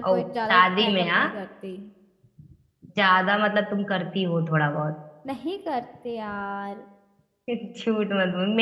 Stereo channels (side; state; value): both; identical; correlation 1.00